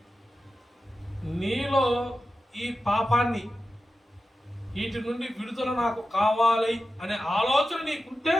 నీలో ఈ పాపాన్ని, వీటి నుండి విడుదల నాకు కావాలి అనే ఆలోచన నీకుంటే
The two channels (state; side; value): normal; both; correlation 0.92